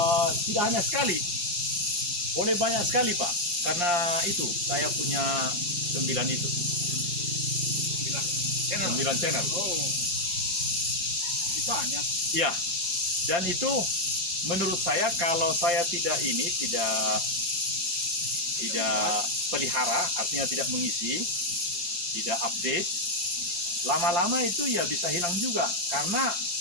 tidak hanya sekali. Boleh banyak sekali Pak. Karena itu saya punya 9 itu. 9 channel. Oh. Banyak. Iya. Dan itu menurut saya kalau saya tidak pelihara, artinya tidak mengisi, tidak update, lama-lama itu ya bisa hilang juga. Karena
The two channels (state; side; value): late; left; 4.7 ms